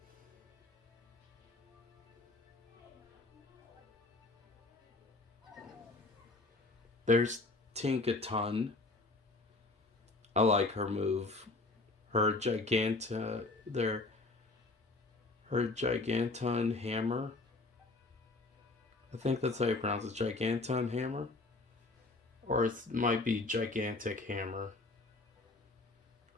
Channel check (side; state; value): right; quieter; 3.2 dB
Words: There's Tinkaton. I like her move. Her Giganton Hammer. I think that's how you pronounce it. Giganton Hammer? Or it might be Gigantic Hammer.